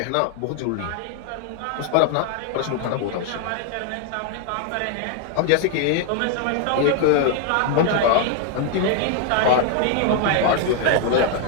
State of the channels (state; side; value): different; both; correlation 0.00